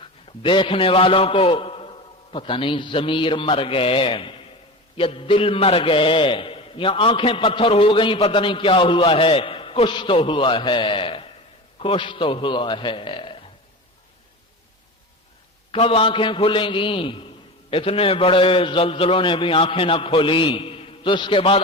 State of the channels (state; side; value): normal; both; correlation 0.29